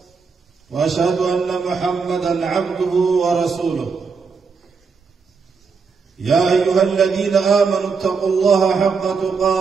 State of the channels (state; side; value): quieter; left; 5.2 dB